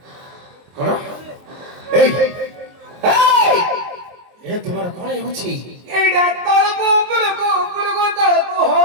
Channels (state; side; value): late; left; 23 ms